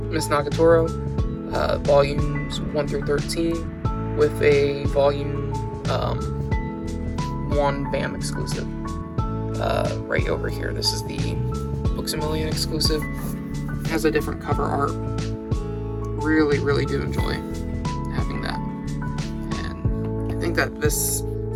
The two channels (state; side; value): identical; both; correlation 1.00